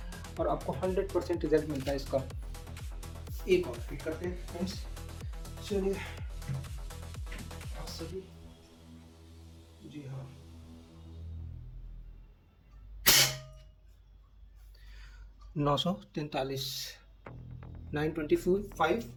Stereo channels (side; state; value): both; identical; correlation 1.00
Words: और आपको 100% रिजल्ट मिलता है इसका। एक और फिट करते हैं फ्रेंड्स, चलिए सभी, जी हाँ, 943, 925